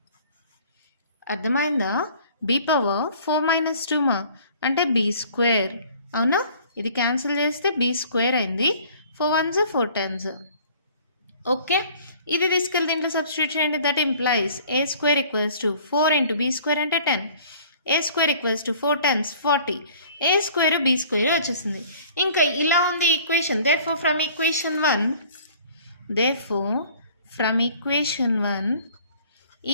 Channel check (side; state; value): both; inverted; correlation -0.51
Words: అర్థమైందా? బీ పవర్ 4 - 2 అంటే బీ స్క్వేర్. అవునా? ఇది క్యాన్సిల్ చేస్తే బీ స్క్వేర్ అయింది. 4 1s 4 10s. ఓకే, ఇది తీసుకెళ్ళి దీంట్లో సబ్స్టిట్యూట్ చేయండి. That implies A square equals to 4 × b square అంటే 10. A square equals to 4 10s 40. A square b square వచ్చేసింది. ఇంకా ఇలా ఉంది equation. Therefore from equation 1